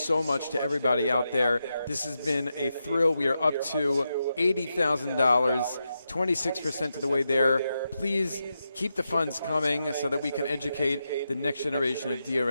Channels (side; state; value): both; inverted; correlation -0.87